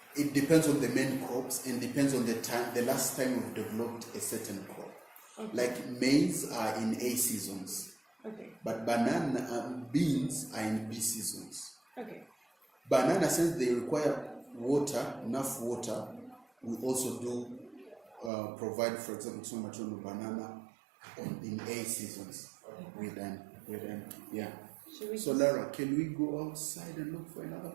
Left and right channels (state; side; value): drops out; left; at 18.3 s